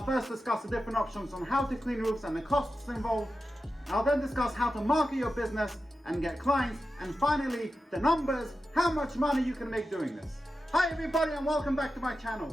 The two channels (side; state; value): both; normal; correlation 0.91